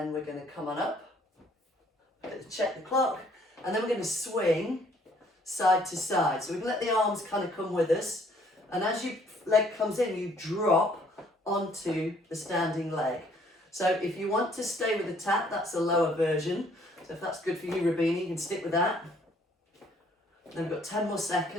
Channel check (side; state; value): both; normal; correlation 0.62